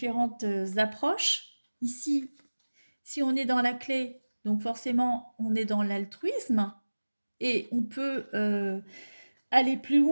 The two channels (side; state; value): both; inverted; correlation -1.00